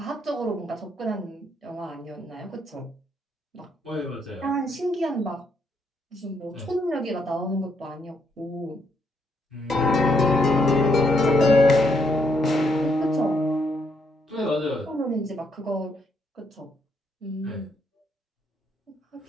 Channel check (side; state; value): both; normal; correlation 0.74